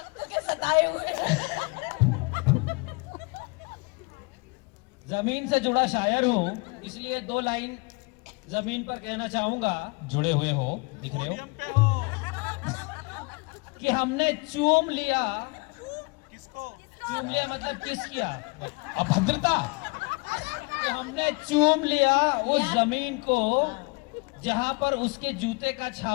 के सताए हुए। जमीन से जुड़ा शायर हूँ, इसलिए 2 लाइन जमीन पर कहना चाहूंगा जुड़े हुए हो, दिख रहे हो। कि हमने चूम लिया। चूम लिया मतलब किस किया? अभद्रता। कि हमने चूम लिया उस जमीन को जहां पर उसके जूते का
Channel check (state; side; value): quieter; right; 29.3 dB